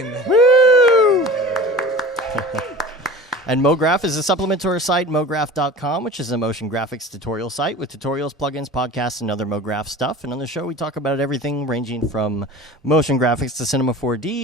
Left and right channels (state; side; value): normal; both; correlation 0.38